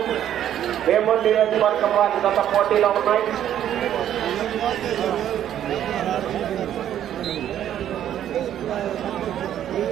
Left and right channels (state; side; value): quieter; left; 10.8 dB